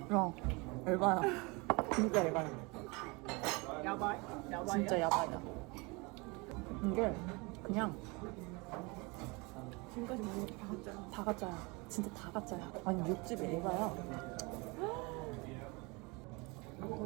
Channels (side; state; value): left; quieter; 27.3 dB